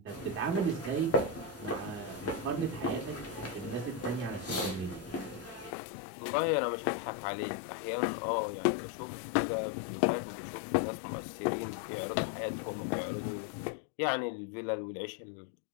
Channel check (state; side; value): drops out; right; at 5.7 s